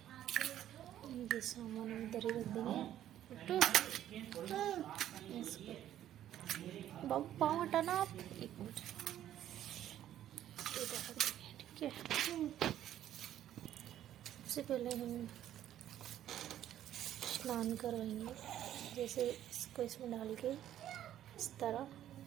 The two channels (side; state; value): left; quieter; 11.7 dB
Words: ये सामान हम इधर ही रख देंगे। बाबू पाँव हटाना आप, एक मिनट, ठीक है? सबसे पहले हम स्नान करवाएंगे, जैसे इसको इसमें डाल के इस तरह